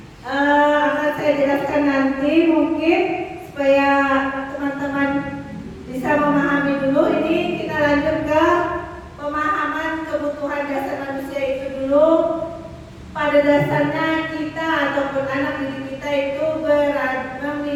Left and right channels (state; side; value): identical; both; correlation 1.00